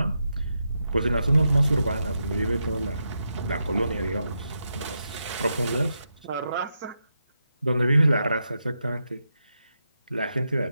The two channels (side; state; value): both; inverted; correlation -0.85